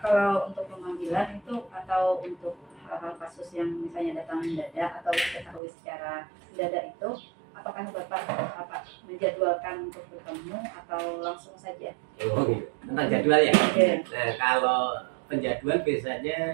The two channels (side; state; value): left; drops out; at 5.6 s